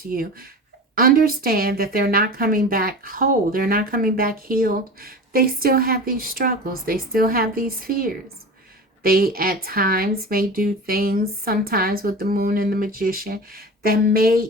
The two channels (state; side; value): normal; both; correlation 0.33